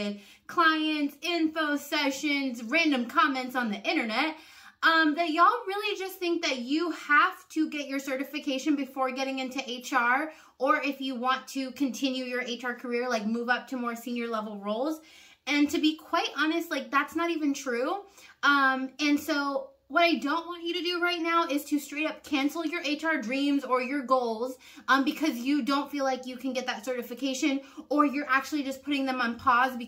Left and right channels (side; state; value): both; identical; correlation 1.00